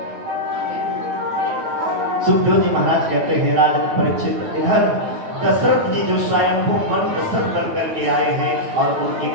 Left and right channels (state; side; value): late; left; 9.1 ms